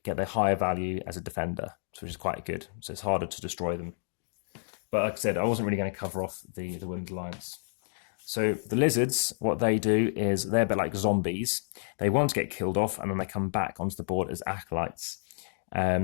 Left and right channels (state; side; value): silent; right; digital silence